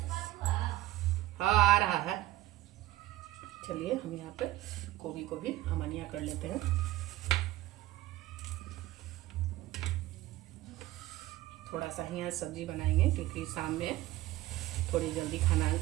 हाँ आ रहा है। चलिए हम यहाँ पे गोभी को भी अमनिया कर लेते हैं। थोड़ा सा ही आज सब्जी बनाएंगे, क्योंकि शाम में थोड़ी जल्दी खाना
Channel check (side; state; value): left; quieter; 16.3 dB